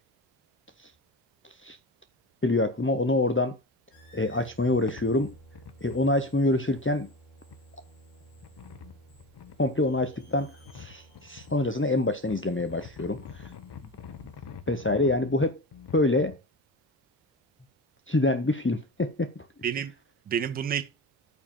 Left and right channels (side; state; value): both; normal; correlation 0.28